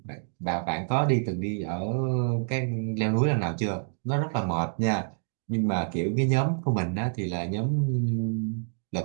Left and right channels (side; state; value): left; silent; digital silence